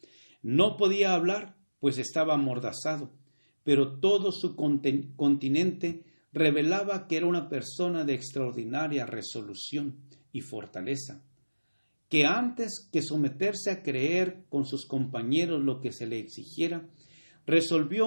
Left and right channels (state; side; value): inverted; both; correlation -1.00